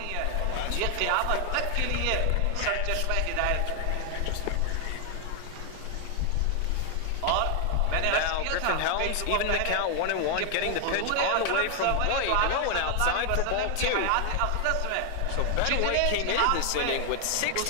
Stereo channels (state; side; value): different; both; correlation 0.00